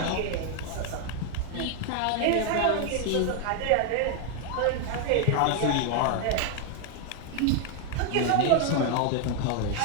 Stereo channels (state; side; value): different; both; correlation 0.00